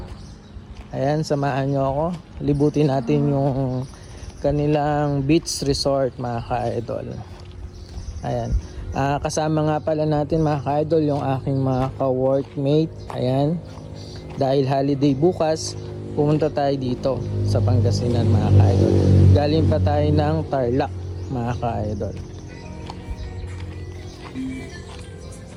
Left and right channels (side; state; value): both; identical; correlation 1.00